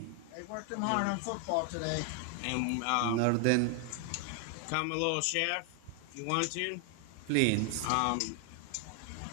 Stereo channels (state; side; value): different; both; correlation 0.00